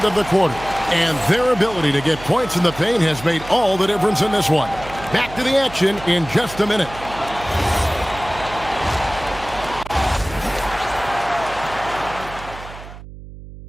of the quarter. And their ability to get points in the paint has made all the difference in this one. Back to the action in just a minute.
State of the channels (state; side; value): noise; right; hum, 15 dB below the sound